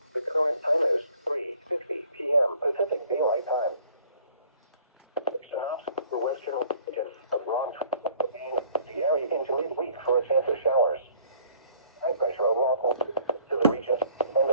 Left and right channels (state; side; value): inverted; both; correlation -0.57